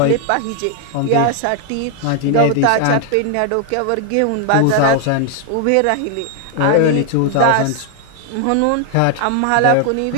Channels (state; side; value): different; both; correlation 0.00